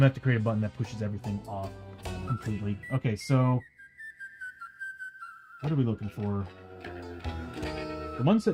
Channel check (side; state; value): both; identical; correlation 1.00